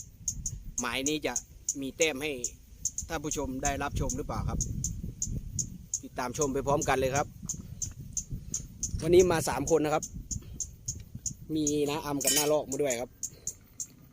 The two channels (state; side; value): identical; both; correlation 1.00